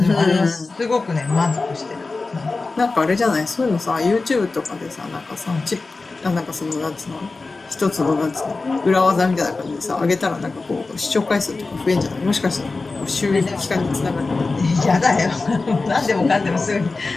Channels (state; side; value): quieter; right; 3.7 dB